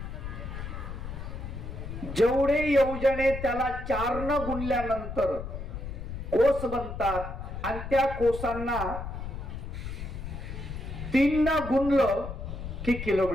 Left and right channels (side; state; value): left; noise; rumble, 7 dB below the sound